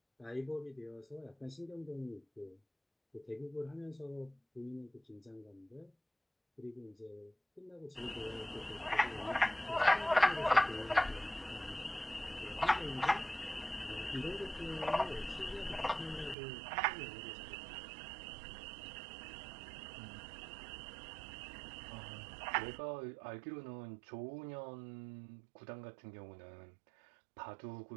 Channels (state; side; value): drops out; left; at 16.4 s